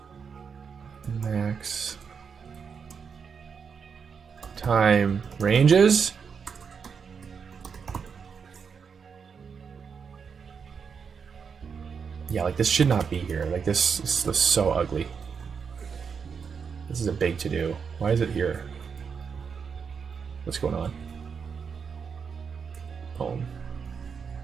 max time ranges. Yeah, like this should not be here. Like this looks so ugly. This is a big to do. Why is it here? What's going on? Home.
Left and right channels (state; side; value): quieter; left; 6.2 dB